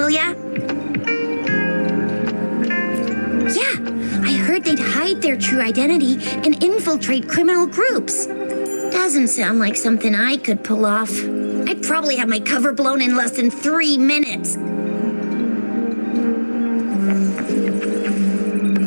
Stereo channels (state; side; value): inverted; both; correlation -1.00